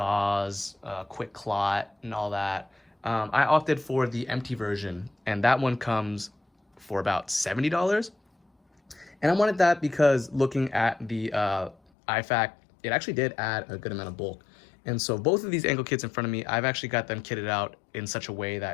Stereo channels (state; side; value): drops out; right; at 11.8 s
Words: quick clot, and all that. I opted for the empty version, and that one comes for about $70. And I wanted that because looking at the IFAK, it actually did add a good amount of bulk. And so both of these ankle kits in front of me, I've actually got them kitted out in such a way